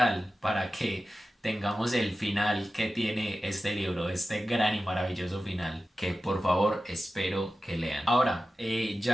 para que tengamos el final que tiene este libro, este gran y maravilloso final, que por favor espero que lean. Ahora,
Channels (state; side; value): normal; both; correlation 0.93